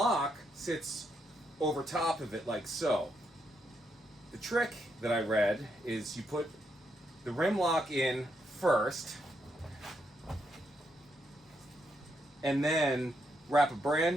sits over top of it like so. The trick that I read is you put the rim lock in first, and then wrap a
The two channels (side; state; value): both; normal; correlation 0.79